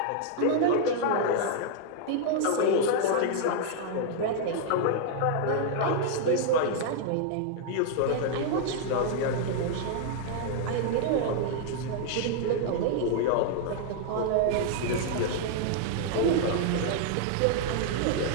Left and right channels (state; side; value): different; both; correlation 0.00